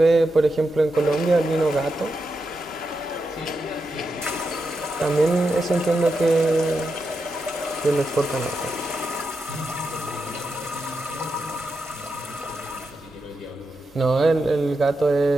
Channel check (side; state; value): both; normal; correlation 0.87